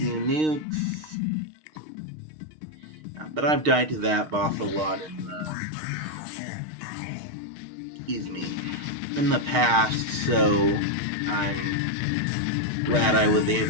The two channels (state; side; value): late; left; 6.5 ms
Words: nukes. But I've died to that boss a lot in the past, so I'm glad I was